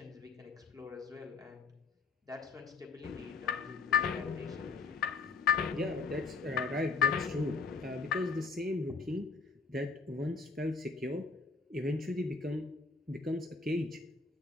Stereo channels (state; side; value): quieter; right; 4.4 dB